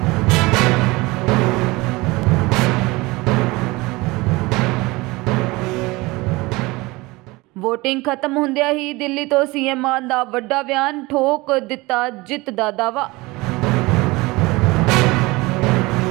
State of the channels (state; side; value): quieter; left; 22.4 dB